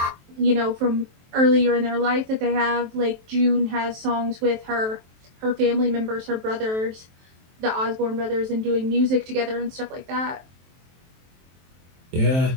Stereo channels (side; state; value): left; late; 23 ms